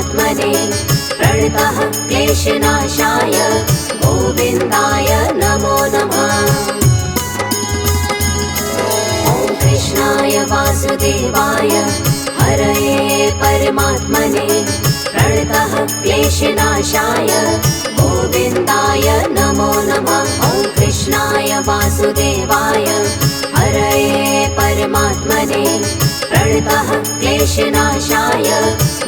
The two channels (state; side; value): identical; both; correlation 1.00